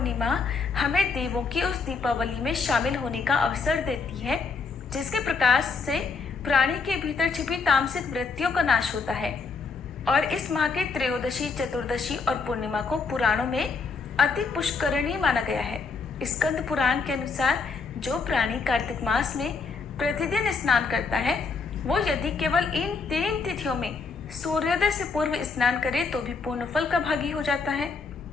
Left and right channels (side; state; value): right; quieter; 4.7 dB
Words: हमें देवों की उस दीपावली में शामिल होने का अवसर देती है जिसके प्रकाश से प्राणी के भीतर छिपी तामसिक वृत्तियों का नाश होता है। और इस माह के त्रयोदशी, चतुर्दशी और पूर्णिमा को पुराणों में अति पुष्करणीय माना गया है। स्कंद पुराण के अनुसार जो प्राणी कार्तिक मास में प्रतिदिन स्नान करता है वो यदि केवल इन 3 तिथियों में सूर्योदय से पूर्व स्नान करे तो भी पूर्ण फल का भागी हो जाता है।